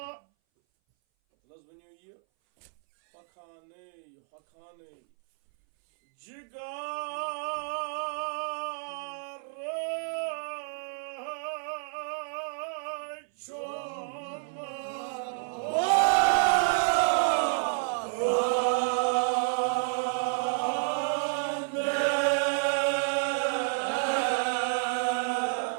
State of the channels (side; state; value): left; silent; 58 dB below the other